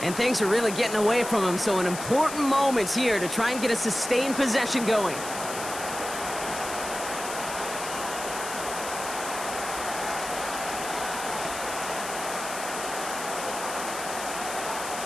And things are really getting away from him, so an important moment here to try and get a sustained possession going.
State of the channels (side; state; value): left; noise; hiss, 8 dB below the sound